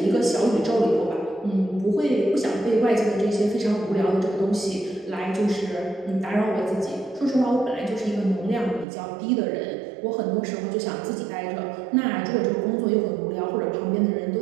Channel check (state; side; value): drops out; left; at 8.8 s